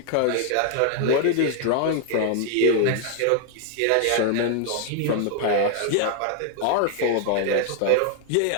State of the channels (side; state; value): both; different; correlation 0.00